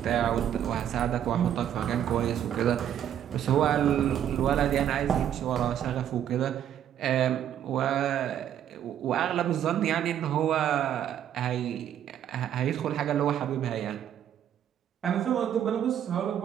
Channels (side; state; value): left; quieter; 10.1 dB